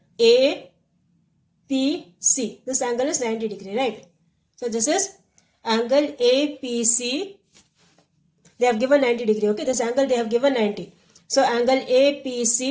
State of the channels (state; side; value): identical; both; correlation 1.00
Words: APC. This angle is 90 degree, right? So this is angle APC. They have given 90 degree. Okay, this angle they have given 90. So angle